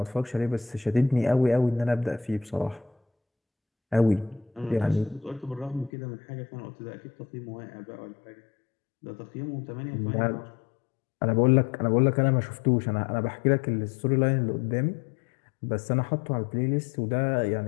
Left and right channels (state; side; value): drops out; right; at 5.9 s